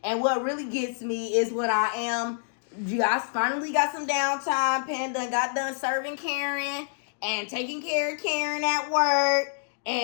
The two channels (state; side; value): silent; right; digital silence